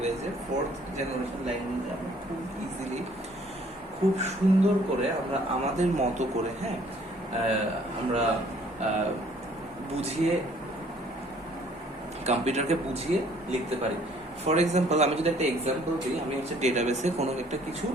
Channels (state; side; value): normal; both; correlation 0.59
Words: 4th জেনারেশন ল্যাঙ্গুয়েজে আমরা খুব ইজিলি, খুব সুন্দর করে আমরা আমাদের মতো করে, হ্যাঁ, আমরা বুঝিয়ে, কম্পিউটারকে বুঝিয়ে লিখতে পারি। ফর এক্সাম্পল, আমি যদি একটা এক্সাম্পল দিই, আমি হচ্ছে ডেটাবেসে কোনো একটা কিছু